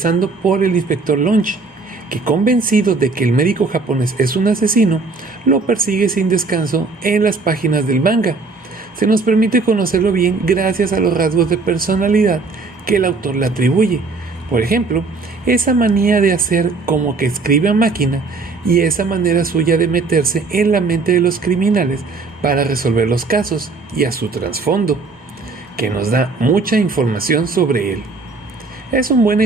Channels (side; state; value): left; quieter; 4.0 dB